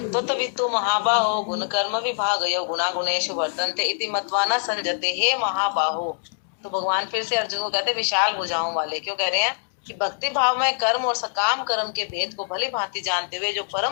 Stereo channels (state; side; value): silent; right; digital silence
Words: तो तत्वितु महाबाहो गुण कर्म विभागयो गुणा गुणेषु वर्तन्ते इति मत्वा न संजते। हे महाबाहो, तो भगवान फिर से अर्जुन को कहते हैं विशाल भुजाओं वाले। क्यों कह रहे हैं? कि भक्ति भाव में कर्म और सकाम कर्म के भेद को भली भांति जानते हुए जो